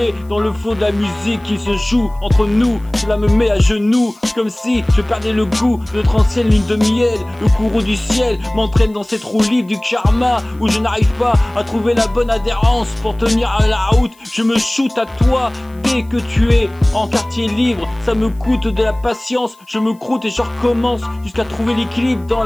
dans le flot de la musique qui se joue entre nous. Cela me met à genoux, comme si je perdais le goût de notre ancienne ligne de miel. Le courroux du ciel m'entraîne dans cette roue libre du karma, où je n'arrive pas à trouver la bonne adhérence pour tenir à la route. Je me shoot à toi dès que tu es en quartier libre. Ça me coûte de la patience, je me croûte et je recommence jusqu'à trouver l'équilibre dans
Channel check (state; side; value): noise; left; hiss, 30 dB below the sound